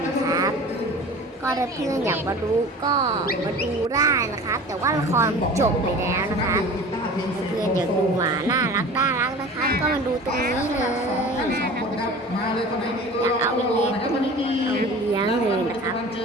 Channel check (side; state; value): both; normal; correlation 0.39